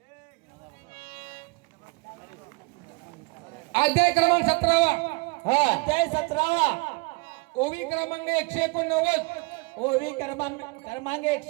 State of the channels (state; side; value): quieter; left; 28.6 dB